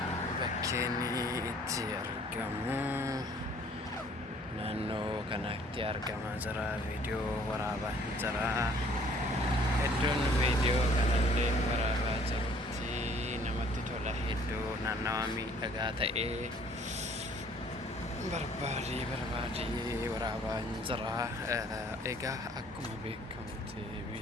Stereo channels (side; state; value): both; normal; correlation 0.58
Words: بكيني اتيارقمو naannoo kanatti argamaa jira viidiyoo waraabaa jira. Iddoon viidiyoo kanallee waraabaa jirutti namatti tola. Iddoo naannawaa miidhagaa ta'ee barbaadee waraabaa jira. Egaa akkuma beekamutti